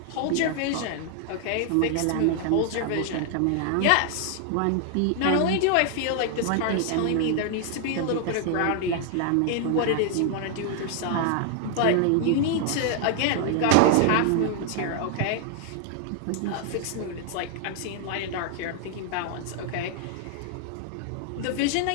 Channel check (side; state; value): both; different; correlation 0.00